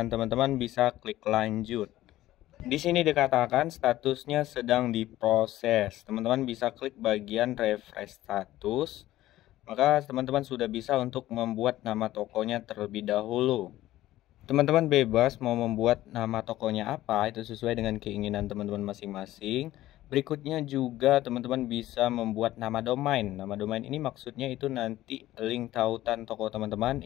teman-teman bisa klik lanjut. Di sini dikatakan statusnya sedang diproses. Teman-teman bisa klik bagian refresh status. Maka teman-teman sudah bisa untuk membuat nama tokonya terlebih dahulu. Teman-teman bebas mau membuat nama tokonya apa, itu sesuai dengan keinginan teman-teman masing-masing. Berikutnya juga teman-teman bisa membuat nama domain. Nama domain ini maksudnya itu nanti link tautan toko teman-teman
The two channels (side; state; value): right; quieter; 15.2 dB